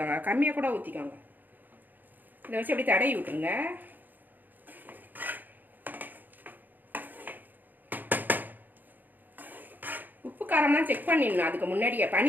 கம்மியாக கூட ஊற்றிக்கோங்க. இதை வச்சு அப்படி தடவி விட்டுருங்க. உப்பு காரம்லாம் செக் பண்ணிடணும். அதுக்கு முன்னாடியே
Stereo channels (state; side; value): late; left; 0.087 ms